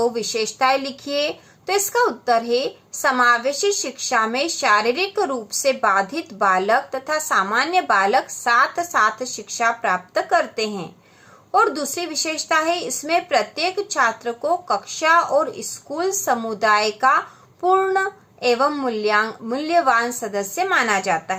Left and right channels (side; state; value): both; identical; correlation 1.00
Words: विशेषताएं लिखिए। तो इसका उत्तर है समावेशी शिक्षा में शारीरिक रूप से बाधित बालक तथा सामान्य बालक साथ साथ शिक्षा प्राप्त करते हैं। और दूसरी विशेषता है इसमें प्रत्येक छात्र को कक्षा और स्कूल समुदाय का पूर्ण एवं मूल्यवान सदस्य माना जाता